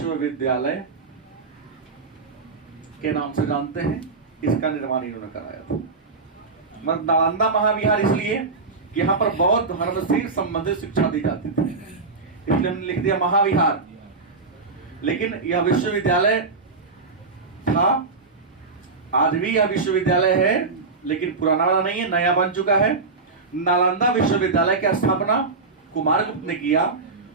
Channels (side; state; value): left; quieter; 4.1 dB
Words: के नाम से जानते हैं, इसका निर्माण इन्होंने कराया था। मतलब नालंदा महाविहार इसलिए कि यहाँ पर बौद्ध धर्म से संबंधित शिक्षा दी जाती थी, इसलिए हमने लिख दिया महाविहार। लेकिन यह विश्वविद्यालय था, आज भी यह विश्वविद्यालय है, लेकिन पुराना वाला नहीं है, नया बन चुका है। नालंदा विश्वविद्यालय की स्थापना कुमारगुप्त ने किया।